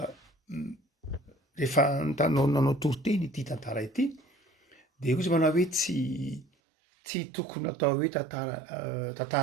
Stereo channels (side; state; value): left; drops out; at 6.5 s